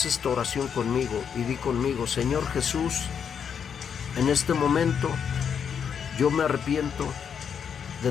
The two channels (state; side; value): quieter; right; 7.4 dB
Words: esta oración conmigo y di conmigo: Señor Jesús, en este momento yo me arrepiento